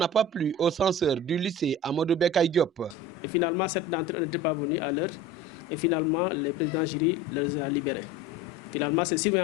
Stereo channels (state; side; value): normal; both; correlation 0.36